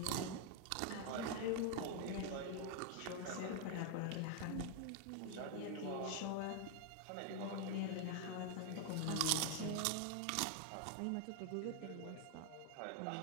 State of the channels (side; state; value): both; different; correlation 0.00